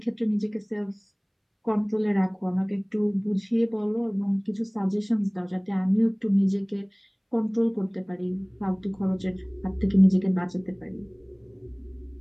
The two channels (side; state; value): both; identical; correlation 1.00